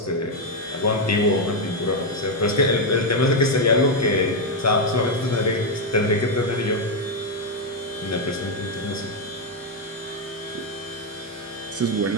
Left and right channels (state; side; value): normal; both; correlation 0.02